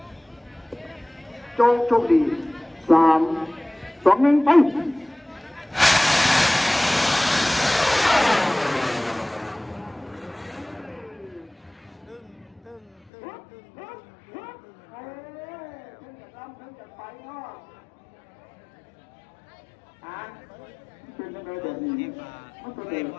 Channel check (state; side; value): drops out; right; at 12.9 s